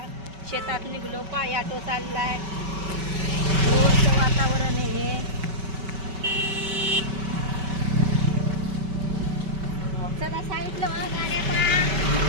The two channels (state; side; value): late; left; 5.2 ms